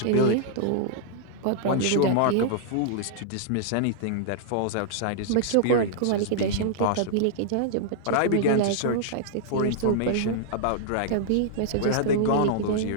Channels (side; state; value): both; different; correlation -0.01